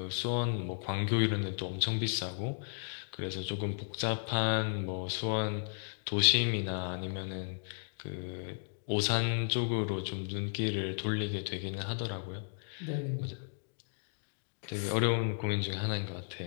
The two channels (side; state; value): right; silent; digital silence